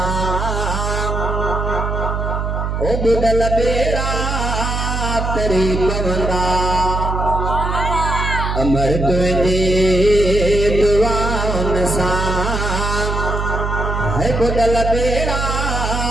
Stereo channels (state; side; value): noise; right; hum, 2 dB below the sound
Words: ओ बुदल बेड़ा तेरी पवंदा अमर तुझे दुआन सा है बुदल बेड़ा